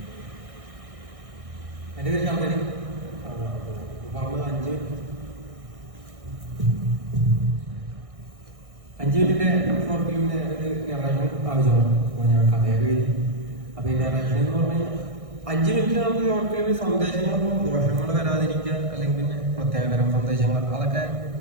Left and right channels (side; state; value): left; late; 1.6 ms